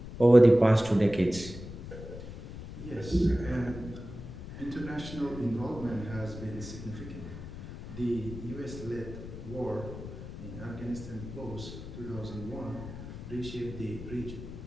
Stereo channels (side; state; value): left; noise; rumble, 11 dB below the sound